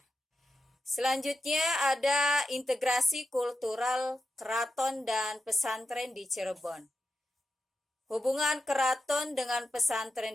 Selanjutnya ada integrasi kultural keraton dan pesantren di Cirebon. Hubungan keraton dengan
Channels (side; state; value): both; normal; correlation 0.90